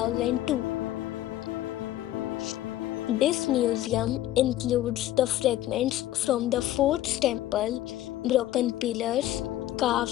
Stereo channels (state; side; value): quieter; right; 13.9 dB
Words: This museum includes the fragments from the fort's temple, broken pillars, carved